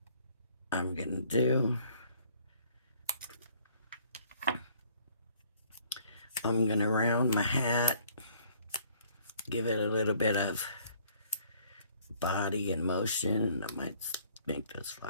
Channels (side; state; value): both; inverted; correlation -0.60